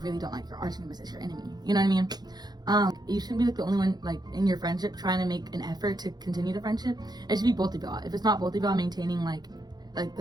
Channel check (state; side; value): late; left; 0.20 ms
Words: really don't like, your arch nemesis, your enemy. You know what I mean? You shouldn't be like the only one like in your friendship trying to make an effort to continue the friendship. It should be both of y'all. If it's not both of y'all maintaining like